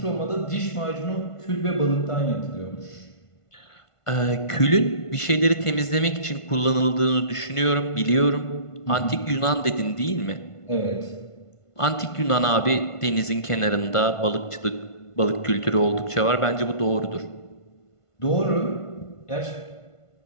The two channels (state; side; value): late; right; 1.5 ms